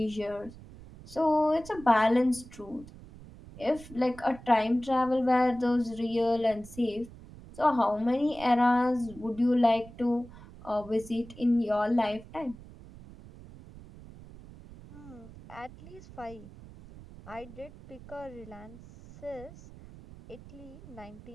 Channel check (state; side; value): noise; right; rumble, 18 dB below the sound